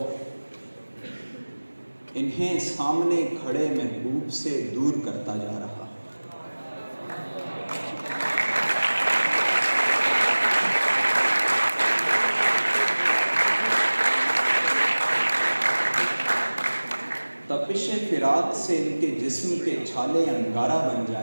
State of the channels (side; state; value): both; inverted; correlation -1.00